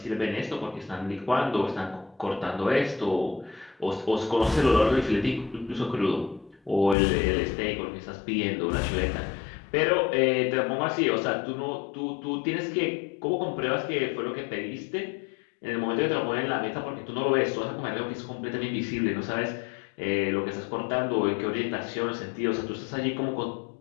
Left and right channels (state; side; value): drops out; right; at 7.0 s